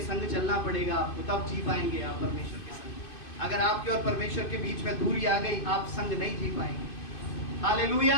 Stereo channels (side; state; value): right; late; 2.5 ms